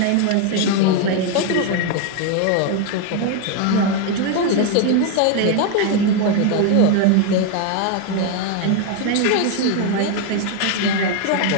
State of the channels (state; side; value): different; both; correlation 0.01